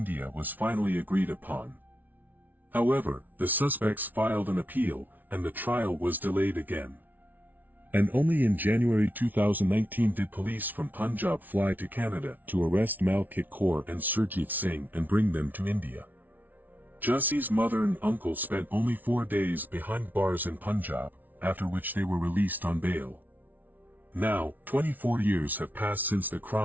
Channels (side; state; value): left; late; 0.082 ms